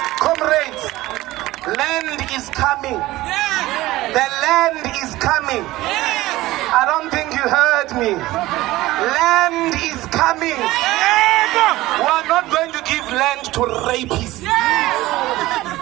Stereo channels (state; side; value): quieter; left; 17.6 dB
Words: Comrades, land is coming. The land is coming. I don't think you heard me. Land is coming. We are not going to give land to rapists.